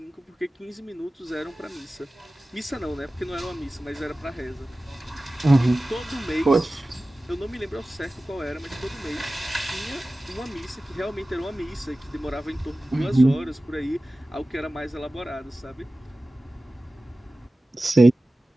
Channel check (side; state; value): both; normal; correlation 0.96